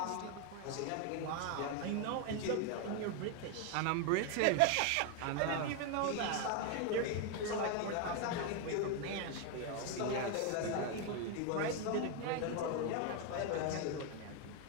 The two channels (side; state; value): both; different; correlation 0.01